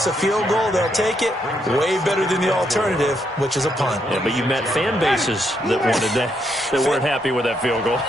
a field goal, they'll take it. Way better than the alternative, which is a punt. Yeah, but you met fan bases that wanted that, that weren't happy with that field goal.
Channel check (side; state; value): both; normal; correlation 0.77